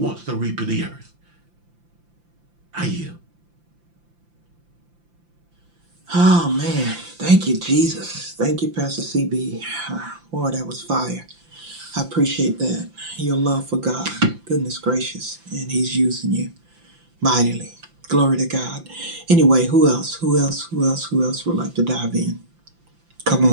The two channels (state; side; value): late; left; 5.8 ms